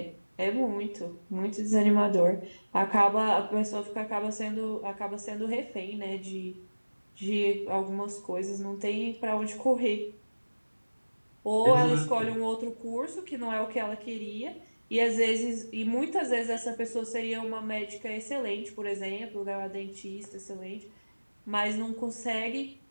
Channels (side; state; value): both; inverted; correlation -1.00